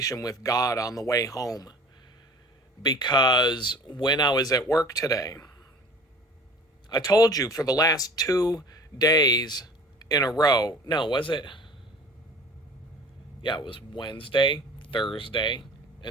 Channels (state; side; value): normal; both; correlation 0.44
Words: with God on the way home. Because when I was at work today, I told you for the last 2 days in a row, no, was it? Yeah, it was Wednesday, Thursday,